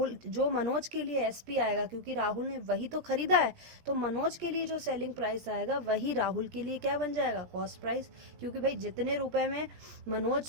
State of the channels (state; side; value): late; left; 17 ms